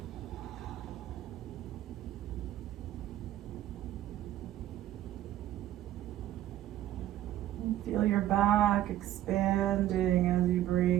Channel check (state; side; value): quieter; left; 13.1 dB